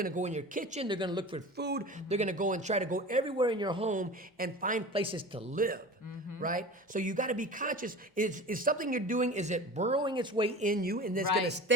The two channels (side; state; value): both; normal; correlation 0.35